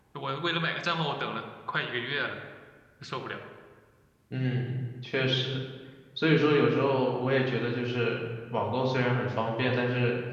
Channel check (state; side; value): identical; both; correlation 1.00